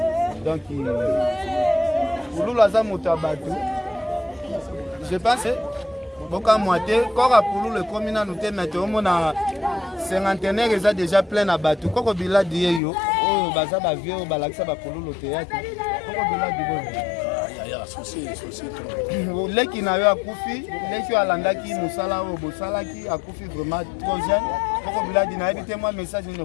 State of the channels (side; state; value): right; drops out; at 12.8 s